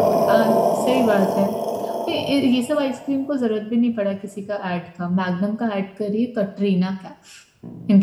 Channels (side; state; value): both; identical; correlation 1.00